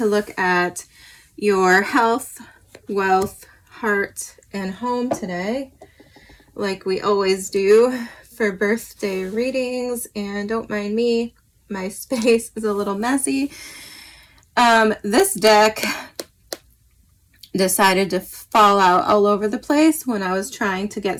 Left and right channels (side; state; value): both; identical; correlation 1.00